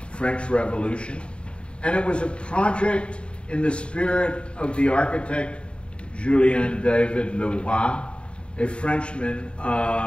French Revolution, and it was a project in the spirit of the architect Julien David Leroy, a Frenchman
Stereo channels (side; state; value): right; late; 0.056 ms